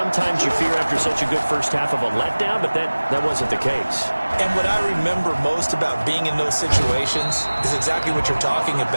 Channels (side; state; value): both; inverted; correlation -1.00